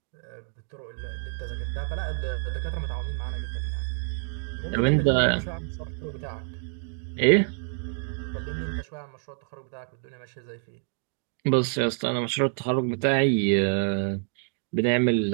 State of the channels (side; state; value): left; silent; 57 dB below the other